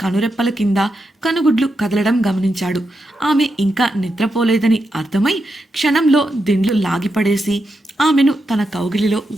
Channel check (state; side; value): normal; both; correlation 0.86